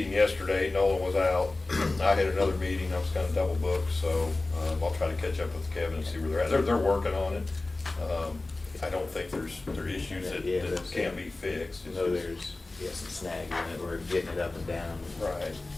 yesterday, Nolan was out, I had another meeting, I was kinda double booked, so, I'll try to catch up with Kevin and see where they're at. They're working on it. I don't think there are issues that can't be fixed. It's No, just- there's, some snags in it, we're getting it up and down. Right.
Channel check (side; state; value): right; quieter; 3.1 dB